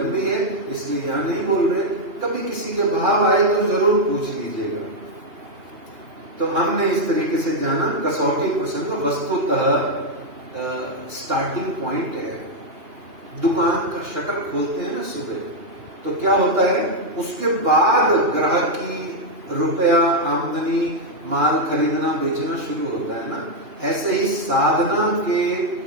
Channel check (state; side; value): late; left; 2.9 ms